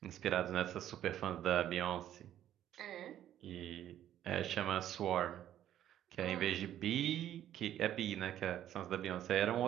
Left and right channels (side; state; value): left; quieter; 11.6 dB